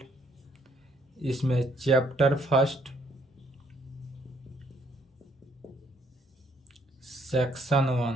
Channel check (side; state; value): both; normal; correlation 0.67